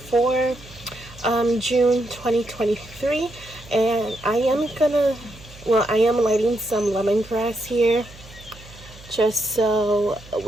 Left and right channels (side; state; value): right; noise; hum, 20 dB below the sound